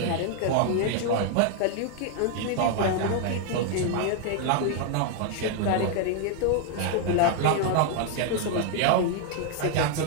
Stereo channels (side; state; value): both; different; correlation 0.00